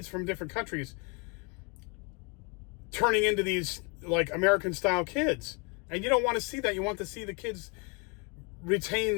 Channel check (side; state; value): right; quieter; 32.3 dB